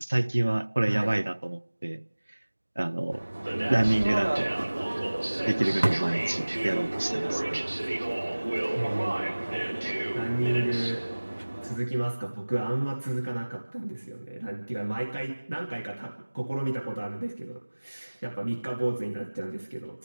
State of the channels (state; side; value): inverted; both; correlation -1.00